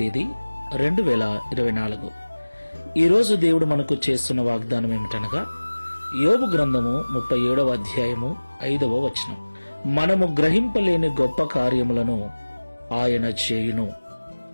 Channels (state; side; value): inverted; both; correlation -1.00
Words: 2024. ఈరోజు దేవుడు మనకు చేస్తున్న వాగ్దానం ఏమిటనగా యోబు గ్రంథము 37వ అధ్యాయము 5వ వచనం. మనము గ్రహింపలేని గొప్ప కార్యములను ఆయన చేయును.